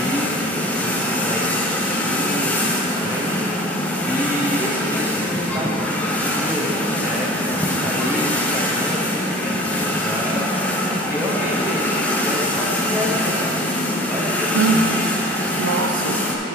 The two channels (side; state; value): both; normal; correlation 0.42